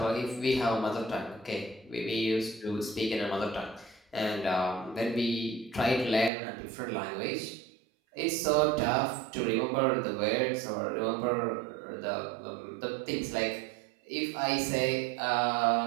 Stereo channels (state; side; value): drops out; left; at 6.3 s